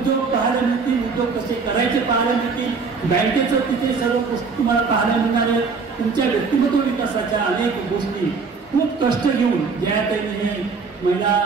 पाहायला मिळतील, उद्योग कसे करायचे पाहायला मिळतील, बँकेचं तिथे सर्व गोष्टी तुम्हाला पाहायला मिळणार आहे. तुमच्या व्यक्तिमत्व विकासाच्या अनेक गोष्टी खूप कष्ट घेऊन जाहिरातीने हे महिला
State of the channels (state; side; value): quieter; left; 4.8 dB